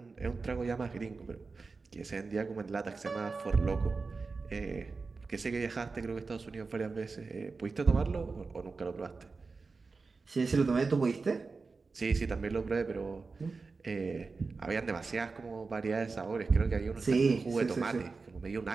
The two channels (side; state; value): left; quieter; 4.2 dB